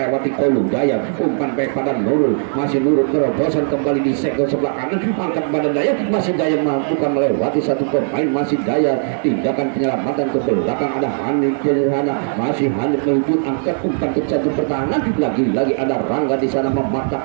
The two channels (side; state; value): left; silent; 62 dB below the other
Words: Kolu, Dayat umpan baik pada Nurul, masih Nurul terobosan kembali di sektor sebelah kanan, angkat pada Dayat, masih Dayat mampukan melewati satu pemain, masih Dayat, tindakan penyelamatan ke belakang ada Hanif di sana, masih Hanif menuju angkat umpan ke satu pertahanan, lagi-lagi ada Rangga di sana